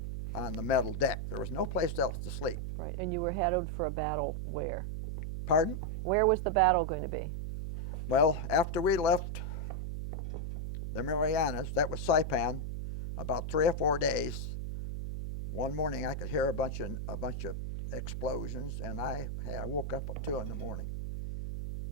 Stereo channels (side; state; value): right; noise; hum, 4 dB below the sound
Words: the metal deck. There was no place else to sleep. Right, and you were headed for a battle where? Pardon? Where was the battle going to be? Well, after we left the Marianas, that was Saipan, about 3 or 4 days. One morning I could hear a bunch of explosions, and I woke up at 2 in the morning.